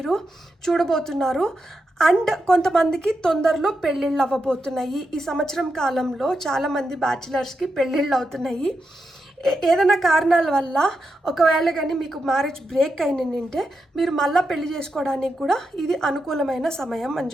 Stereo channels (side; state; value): both; normal; correlation 0.86